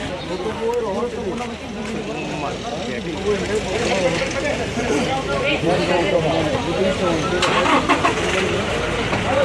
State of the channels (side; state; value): both; identical; correlation 1.00